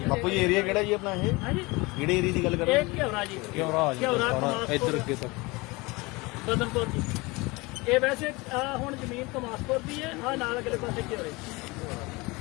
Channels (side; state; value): right; quieter; 24.3 dB